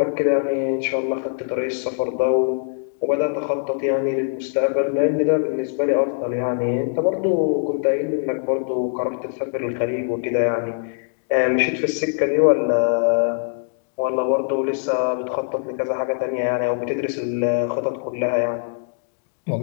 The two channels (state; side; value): silent; right; digital silence